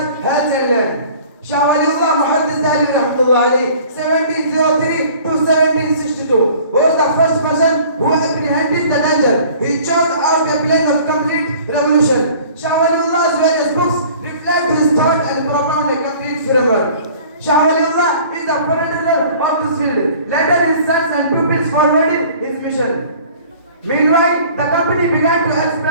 health and land. Shah Waliullah Muhammad 1703 to 1762 was the first person who apprehended the danger. He chose out a plan of complete revolution. Shah Waliullah's various books reflect his thought and propound a complete framework. Shah Waliullah is the progenitor of this field. Later his sons and pupils forwarded his mission. Meanwhile, the company began to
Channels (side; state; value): both; inverted; correlation -0.49